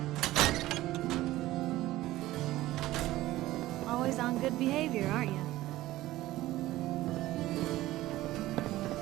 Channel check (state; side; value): quieter; left; 16.3 dB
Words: Always on good behavior, aren't you?